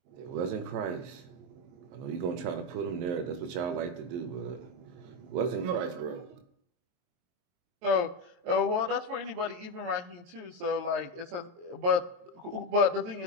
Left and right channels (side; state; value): left; late; 23 ms